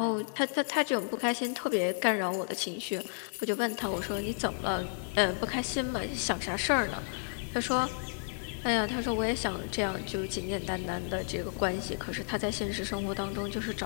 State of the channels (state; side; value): silent; right; digital silence